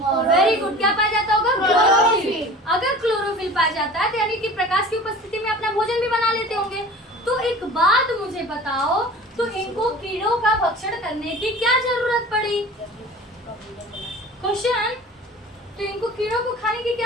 वेरी गुड, क्या पाया जाता होगा? क्लोरोफिल। अगर क्लोरोफिल पाया जाता है तो यानी कि प्रकाश की उपस्थिति में अपना भोजन भी बना लेते होंगे। तो एक बात मुझे बताओ, तो इनको कीड़ों का भक्षण करने की क्या जरूरत पड़ी? क्वेश्चन, तो इनको कीड़ों को खाने की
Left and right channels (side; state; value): both; normal; correlation 0.40